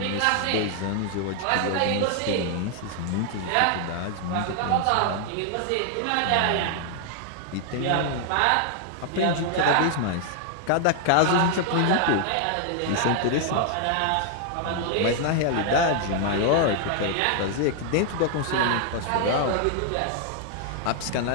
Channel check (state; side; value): different; both; correlation 0.00